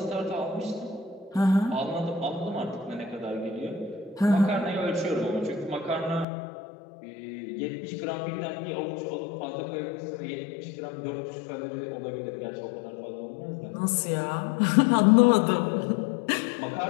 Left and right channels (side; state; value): right; drops out; at 6.2 s